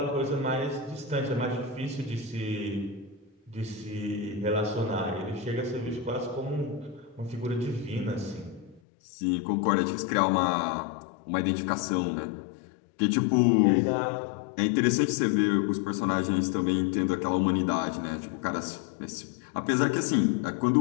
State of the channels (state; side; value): drops out; right; at 8.8 s